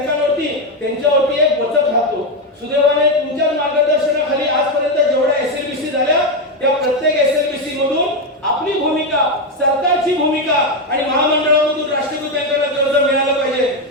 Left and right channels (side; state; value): both; normal; correlation 0.07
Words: त्यांच्यावरती एक वचक राहतो. सुदैवाने तुमच्या मार्गदर्शनाखाली आजपर्यंत जेवढ्या SLBC झाल्या त्या प्रत्येक SLBC मधून आपली भूमिका, सरकारची भूमिका आणि महामंडळामधून राष्ट्रीयकृत बँकांना कर्ज मिळालं पाहिजे